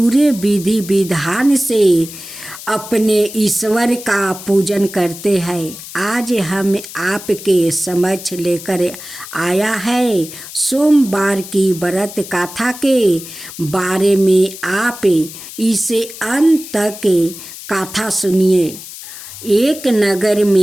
विधि विधान से अपने ईश्वर का पूजन करते हैं। आज हम आपके समक्ष लेकर आया है सोमवार की व्रत कथा के बारे में। आप इसे अंत तक कथा सुनिए। एक नगर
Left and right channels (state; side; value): noise; left; hiss, 13 dB below the sound